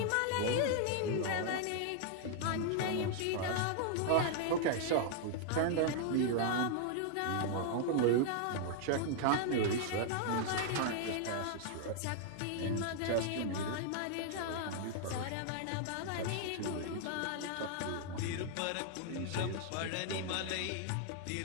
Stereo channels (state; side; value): different; both; correlation 0.00